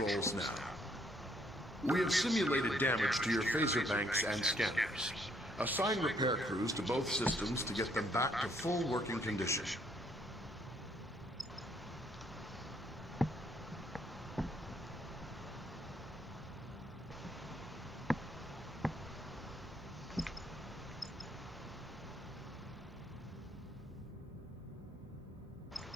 now. We have simulated damage to your phaser banks and scanners. Assign repair crews to both systems to get them back to full working condition.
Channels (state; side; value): normal; both; correlation 0.68